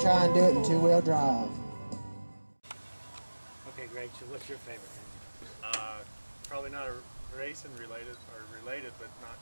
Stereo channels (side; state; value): both; inverted; correlation -1.00